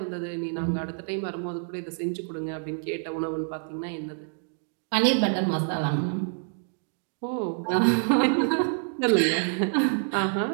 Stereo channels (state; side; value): silent; left; 60 dB below the other